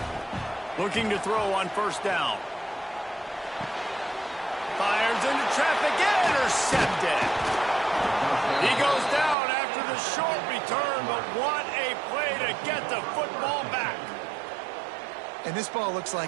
Looking to throw on first down. Fires into traffic, intercepted. He goes down after the short return, but what a play to get the football back. And this ball looks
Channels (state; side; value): drops out; left; at 9.3 s